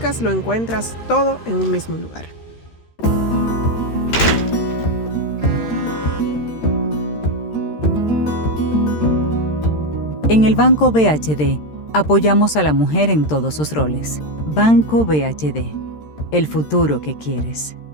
lo encuentras todo en un mismo lugar. En el Banco BHD, apoyamos a la mujer en todos sus roles. Banco BHD, el futuro que quieres.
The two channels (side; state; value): right; late; 13 ms